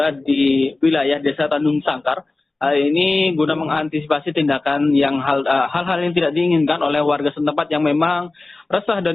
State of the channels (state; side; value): quieter; right; 3.2 dB